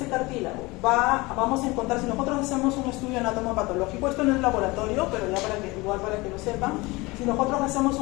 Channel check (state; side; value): quieter; right; 23.0 dB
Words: cartílago? Vamos a encontrar, si nosotros hacemos un estudio anatomopatológico, esto no es laboratorio, pero ya para que lo sepan, si nosotros hacemos